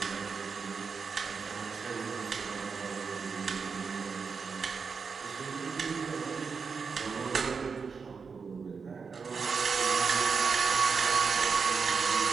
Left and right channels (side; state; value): left; quieter; 5.4 dB